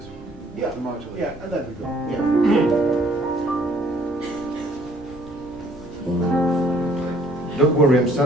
Yeah, and there we go. Yeah. Don't worry, I'm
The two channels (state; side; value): normal; both; correlation 0.61